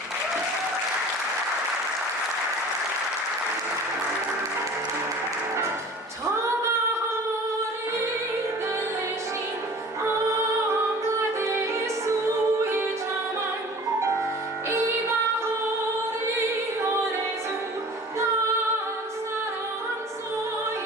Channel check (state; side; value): normal; both; correlation 0.44